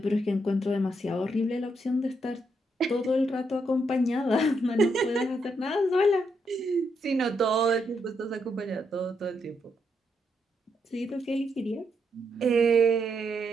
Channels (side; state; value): both; normal; correlation 0.79